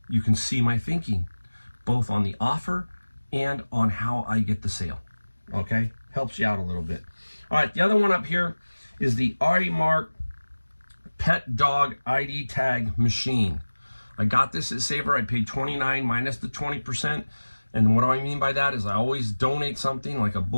you can see my thinking, both on the offer and on how I get the sale, okay? Helps you out a little bit. All right, the other one up here is the Artie Mark Pet Dog ID Tag Machine. I got this at Saver. I paid $29 minus the 20%. And what do I mean by that is I always donate something like a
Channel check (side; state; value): both; inverted; correlation -1.00